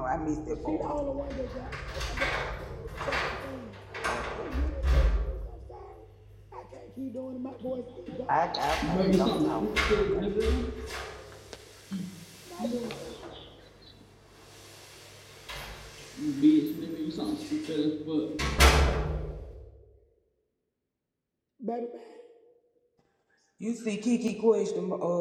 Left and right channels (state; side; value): identical; both; correlation 1.00